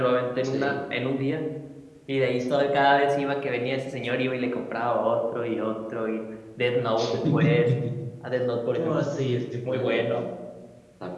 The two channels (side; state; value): both; identical; correlation 1.00